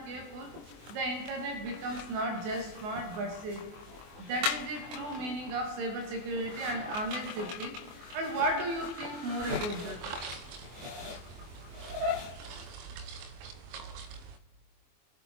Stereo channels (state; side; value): late; left; 24 ms